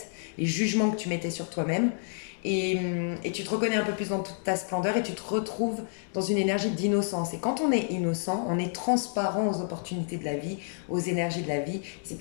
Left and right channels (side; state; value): right; silent; digital silence